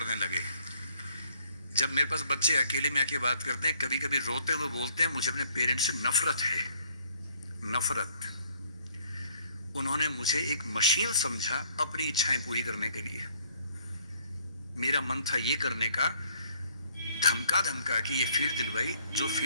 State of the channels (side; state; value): both; inverted; correlation -0.62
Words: लगे। जब मेरे पास बच्चे अकेले में आके बात करते हैं, कभी कभी रोते हुए बोलते हैं मुझे अपने पेरेंट्स से नफरत है, नफरत। उन्होंने मुझे एक मशीन समझा अपनी इच्छाएं पूरी करने के लिए। मेरा मन था ये करने का, धमका धमका कि ये फील्ड दिलवाई जो